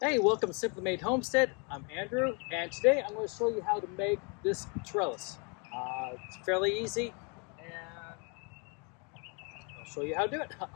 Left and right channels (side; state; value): right; quieter; 34.4 dB